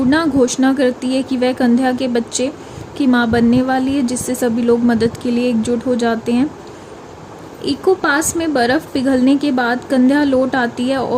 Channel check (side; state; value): both; identical; correlation 1.00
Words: घोषणा करती है कि वह कंध्या के बच्चे की मां बनने वाली है, जिससे सभी लोग मदद के लिए एकजुट हो जाते हैं। इको पास में बर्फ़ पिघलने के बाद कंध्या लौट आती है